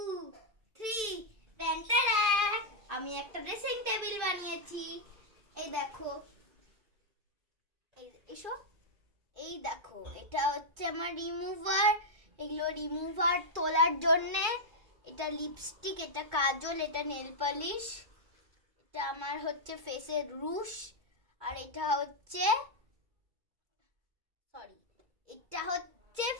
3 টেনটারা, আমি একটা ড্রেসিং টেবিল বানিয়েছি। এই দেখো, এসো, এই দেখো, এটা হচ্ছে আমার রিমুভার। এগুলো রিমুভার তোলার জন্য। এটা লিপস্টিক, এটা কাজল, এটা নেল পলিশ, এটা আমার হচ্ছে ফেসের রুশ, আর এটা হচ্ছে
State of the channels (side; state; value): left; late; 2.3 ms